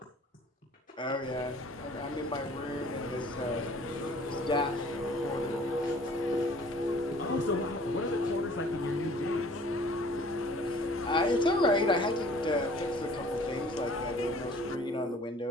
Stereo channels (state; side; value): normal; both; correlation 0.52